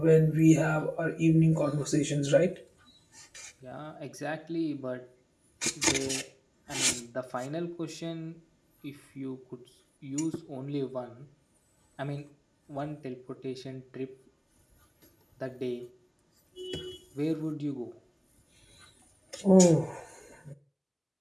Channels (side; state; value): both; identical; correlation 1.00